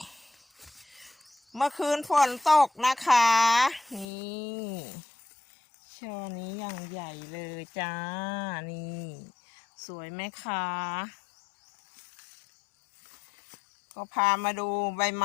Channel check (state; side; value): drops out; right; at 4.0 s